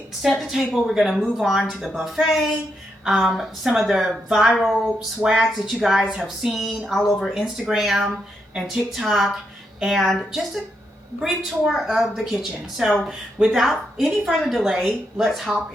set the table, we're going to move on to the buffet. Some of the viral swags that you guys have seen all over Instagram and TikTok, and just a brief tour of the kitchen. So without any further delay, let's hop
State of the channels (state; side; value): normal; both; correlation 0.81